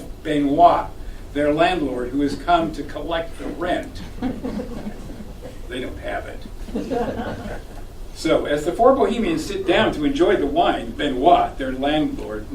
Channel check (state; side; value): identical; both; correlation 1.00